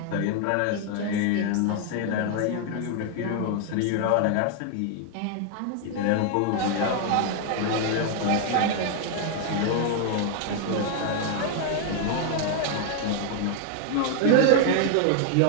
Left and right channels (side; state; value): both; different; correlation 0.00